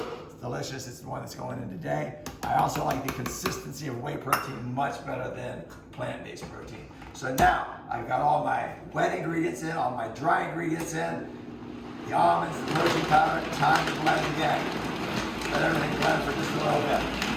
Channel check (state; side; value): identical; both; correlation 1.00